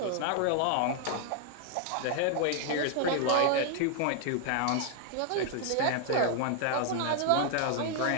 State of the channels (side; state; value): both; different; correlation 0.00